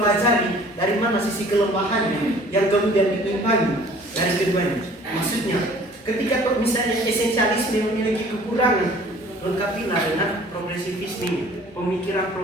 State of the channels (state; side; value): normal; both; correlation 0.51